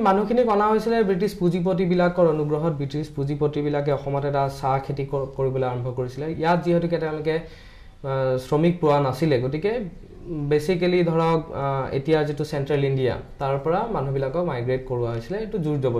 মানুহখিনি অনা হৈছিল ব্ৰিটিছ পুঁজিপতি বিলাকৰ অনুগ্ৰহত ব্ৰিটিছ পুঁজিপতি বিলাকে অসমত এটা চাহ খেতি কৰিবলৈ আৰম্ভ কৰিছিল ইয়াত যেহেতু তেওঁলোকে শ্ৰমিক পোৱা নাছিলে গতিকে বেসিক্যালি ধৰক এতিয়া যেটো সেন্ট্ৰেল ইণ্ডিয়া তাৰ পৰা মানুহবিলাকক মাইগ্ৰেট কৰোৱা হৈছিল এটো জোৰ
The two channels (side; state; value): both; identical; correlation 1.00